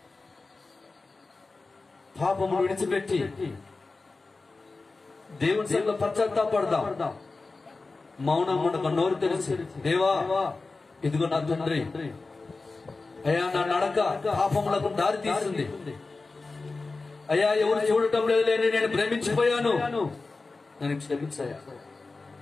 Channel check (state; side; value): quieter; right; 3.7 dB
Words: పాపమును విడిచిపెట్టి దేవుని సన్నిధిలో పశ్చాత్తాపడదాం. మౌనం ఉండక నోరు తెరిచి, దేవా ఇదిగో నా తండ్రి, అయ్యా నా నడక పాపములకు దారి తీస్తుంది, అయ్యా ఎవరు చూడటం లేదులేని నేను ప్రేమించిపోయాను, నన్ను క్షమించయ్యా.